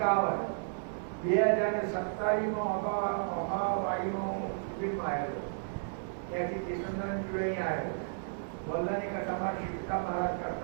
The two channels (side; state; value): left; silent; 56 dB below the other